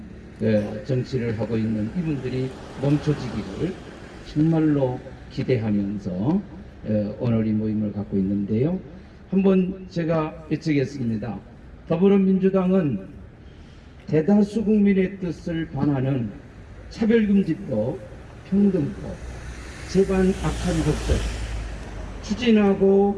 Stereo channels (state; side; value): identical; both; correlation 1.00